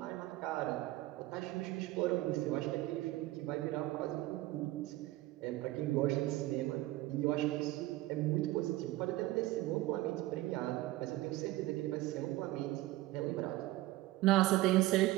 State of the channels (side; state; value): left; quieter; 17.5 dB